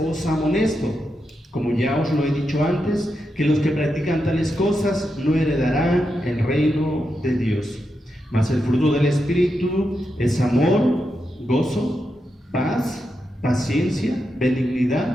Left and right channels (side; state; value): both; normal; correlation 0.86